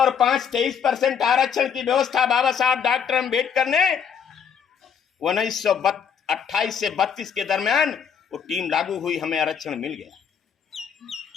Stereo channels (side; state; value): right; quieter; 7.3 dB